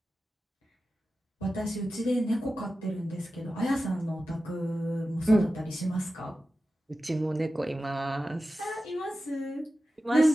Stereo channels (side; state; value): both; normal; correlation 0.93